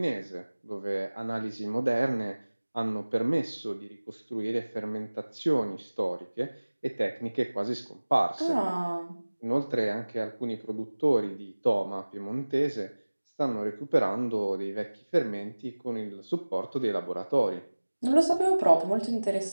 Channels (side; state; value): both; inverted; correlation -1.00